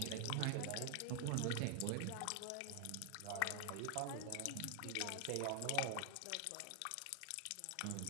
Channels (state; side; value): different; both; correlation 0.00